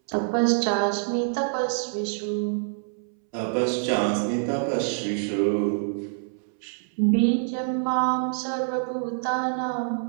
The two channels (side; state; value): left; silent; 61 dB below the other